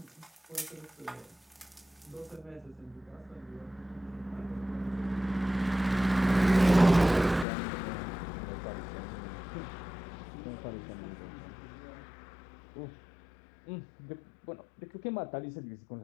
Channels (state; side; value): drops out; right; at 7.5 s